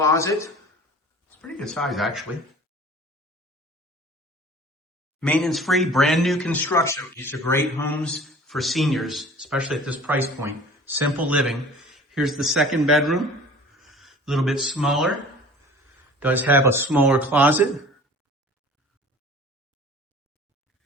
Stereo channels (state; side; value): normal; both; correlation 0.45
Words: It's pretty good size, actually. Maintenance free, brand new construction. These are great homes for seniors, especially at this price point. Simple living. Here's the second bedroom, a little bit smaller. Does have a smaller closet.